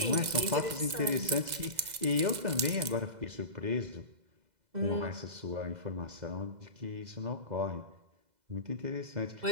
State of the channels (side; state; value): left; late; 2.0 ms